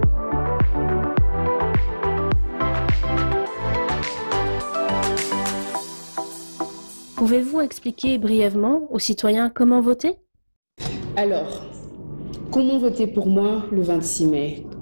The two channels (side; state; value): both; inverted; correlation -1.00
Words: Pouvez-vous expliquer brièvement aux citoyens comment voter ? Alors, comment voter pour moi le 26 mai